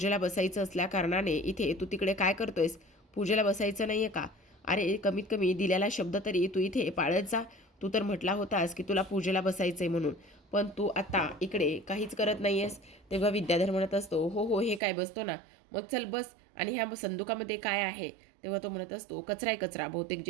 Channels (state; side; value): drops out; left; at 14.8 s